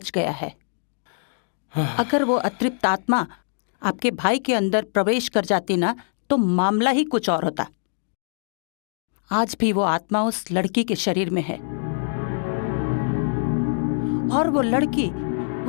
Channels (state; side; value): silent; right; 63 dB below the other